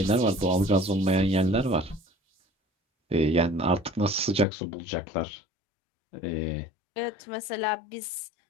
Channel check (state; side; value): drops out; right; at 4.5 s